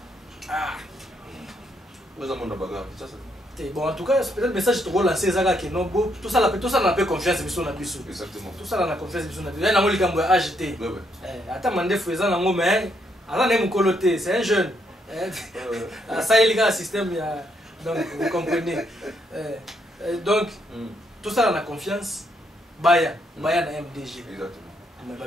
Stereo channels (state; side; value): normal; both; correlation 0.75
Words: Ah. Vous avez mon bagarre. Bon, en tout cas, peut-être le message te relancer ça que non tout ça n'a pas confiance bisou na bisou. Exactement. Tout ça n'a confiance bisou na bisou. Il y a un likambo acheté. Attends mandé faisant nango mais ala ne mukoloté, c'est un jeune. Ça il y a un système donc vous comprenez. Donc tout ça on a confiance. Baya na MDG. Exactement. Mais